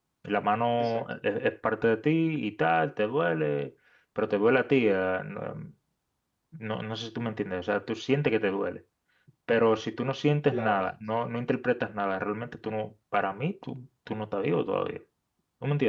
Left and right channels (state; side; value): identical; both; correlation 1.00